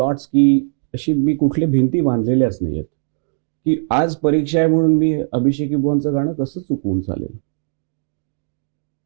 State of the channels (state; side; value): silent; left; digital silence